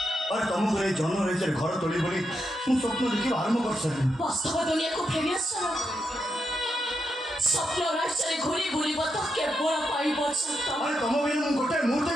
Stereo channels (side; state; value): both; normal; correlation 0.83